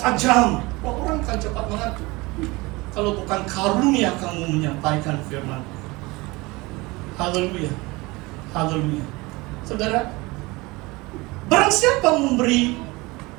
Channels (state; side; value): quieter; left; 23.1 dB